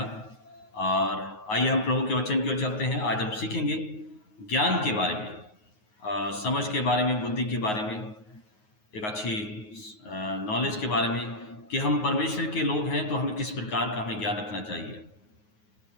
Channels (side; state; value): right; late; 9.4 ms